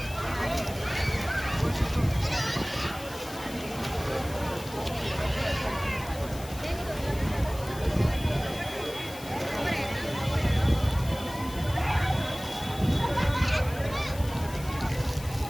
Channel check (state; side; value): noise; left; hiss, 16 dB below the sound